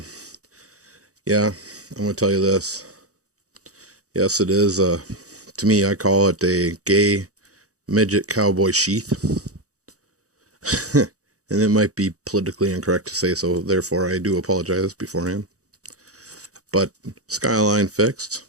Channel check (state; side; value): late; left; 0.66 ms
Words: yeah, I'm going to tell you this. Yes, it is. To me, I call it a gay midget cowboy sheath. And it might be politically incorrect to say so. Therefore, I do apologize beforehand. But Skyline fixed,